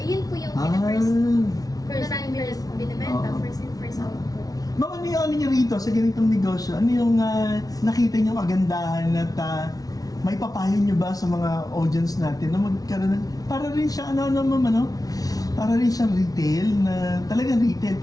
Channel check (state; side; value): late; right; 0.18 ms